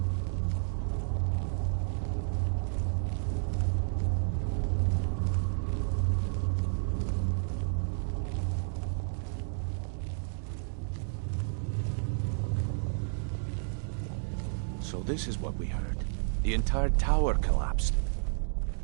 So this is what we heard. The entire tower collapsed.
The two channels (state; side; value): silent; left; digital silence